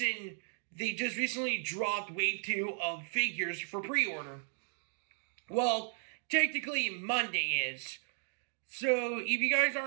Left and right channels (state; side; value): silent; left; 54 dB below the other